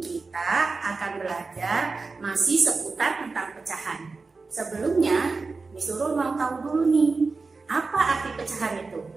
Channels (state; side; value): quieter; left; 4.1 dB